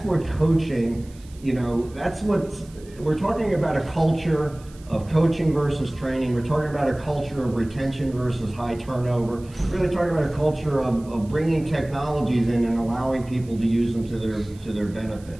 what coaching, you know, that's what we're talking about, a culture of coaching versus training. We're talking about a culture of retention versus high turnover. We're really talking about a culture of bringing technologies in and allowing people to use them to their benefit.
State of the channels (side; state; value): right; noise; hiss, 26 dB below the sound